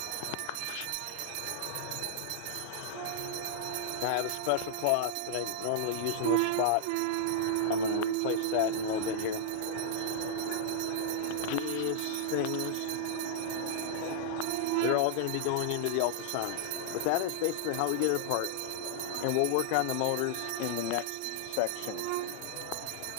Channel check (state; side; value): different; both; correlation -0.01